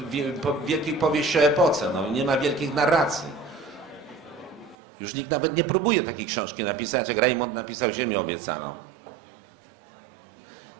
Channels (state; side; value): drops out; left; at 4.8 s